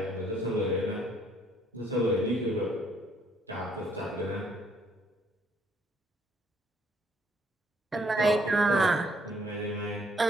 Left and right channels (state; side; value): normal; both; correlation 0.66